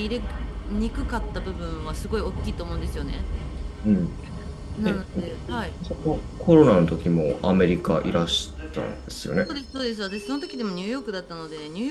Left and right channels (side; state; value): both; identical; correlation 1.00